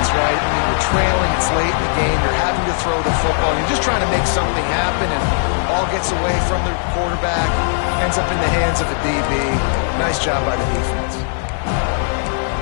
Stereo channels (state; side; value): silent; right; digital silence